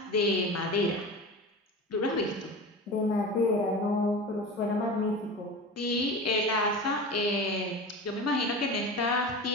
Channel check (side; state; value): both; normal; correlation 0.31